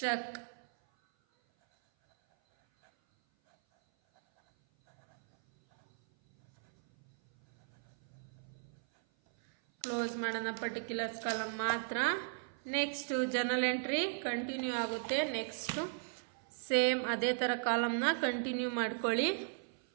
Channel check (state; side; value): silent; left; 53 dB below the other